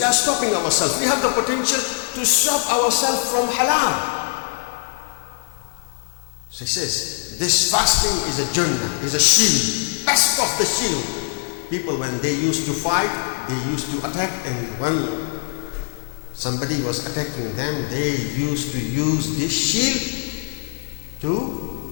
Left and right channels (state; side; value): silent; right; digital silence